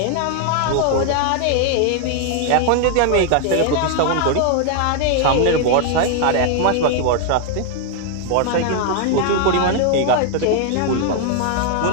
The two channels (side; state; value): both; different; correlation 0.00